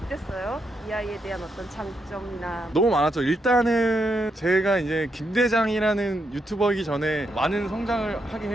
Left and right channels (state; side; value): normal; both; correlation 0.81